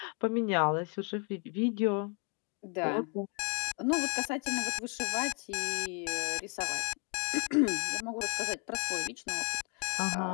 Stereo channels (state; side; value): quieter; right; 34.9 dB